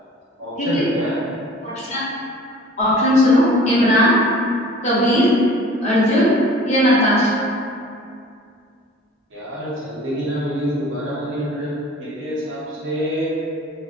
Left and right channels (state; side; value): normal; both; correlation 0.46